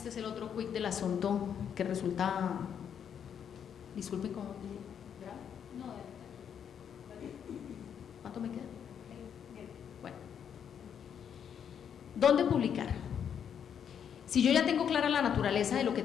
es el otro quick del asunto que resulta, disculpen cómo, ¿cuánto me queda? Bueno, ¿dónde publicar? Si yo ya tengo clara la naturaleza de lo que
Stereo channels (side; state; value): right; quieter; 8.2 dB